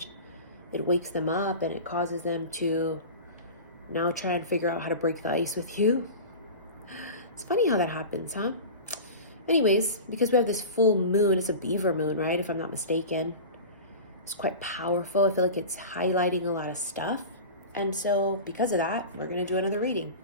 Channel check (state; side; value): inverted; both; correlation -0.32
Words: it wakes them up and it causes them to now try and figure out how to break the ice with you. It's funny how that happens, huh? Anyways, because we have this full moon, it's a beaver moon, right? If I'm not mistaken. It's quite powerful. I feel like it's highlighting a lot of stuff. And so because of that, we're going to do another reading.